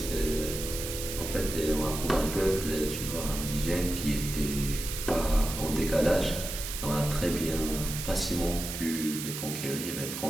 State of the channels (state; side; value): noise; right; hiss, 6 dB below the sound